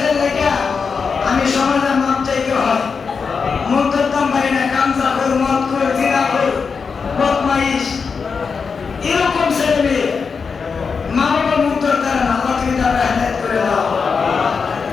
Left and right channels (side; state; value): right; quieter; 5.4 dB